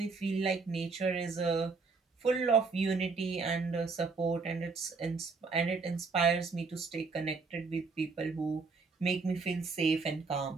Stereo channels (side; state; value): left; quieter; 4.5 dB